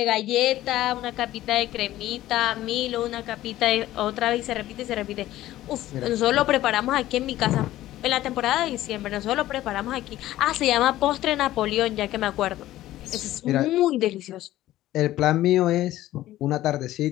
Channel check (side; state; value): right; quieter; 14.8 dB